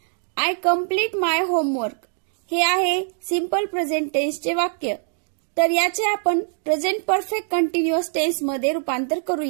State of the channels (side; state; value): left; silent; digital silence